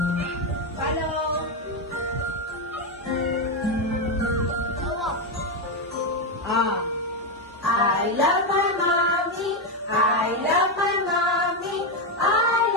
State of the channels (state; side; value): normal; both; correlation 0.07